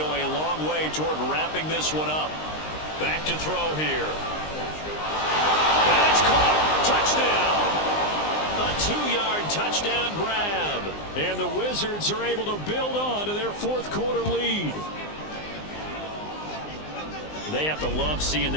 a long way toward wrapping this one up. Back to throw here. And it's caught. Touchdown. A 2-yard touchdown grab. And the Wizards are able to build on to their fourth quarter lead. They have to love seeing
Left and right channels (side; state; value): right; late; 19 ms